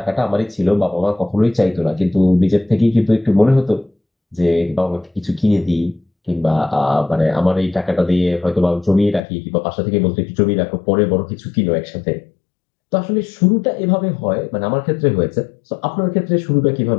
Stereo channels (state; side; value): drops out; right; at 9.2 s